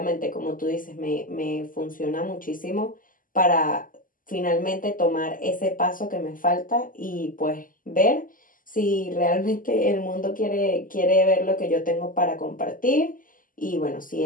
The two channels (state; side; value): late; right; 0.40 ms